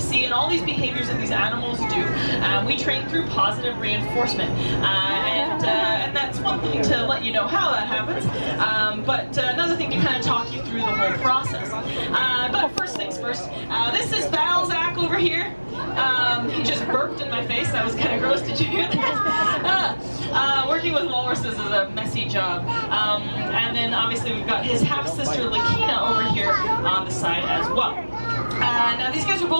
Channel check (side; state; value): both; inverted; correlation -1.00